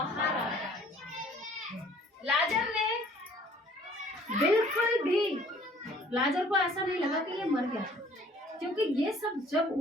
आ गया। लाजर ने बिल्कुल भी, लाजर को ऐसा नहीं लगा कि ये मर गया, क्योंकि ये सब जब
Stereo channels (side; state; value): both; normal; correlation 0.55